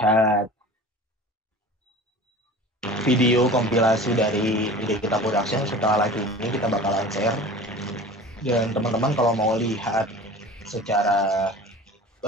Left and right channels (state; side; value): normal; both; correlation 0.39